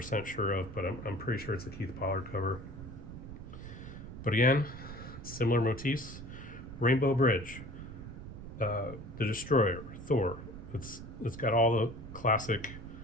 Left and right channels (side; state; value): right; noise; rumble, 11 dB below the sound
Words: sure of, but I'm pretty sure it's a Keith Pollard cover. But again, similar motifs. Rainbow Bridge, the Destroyer, Thor. It's got all the classic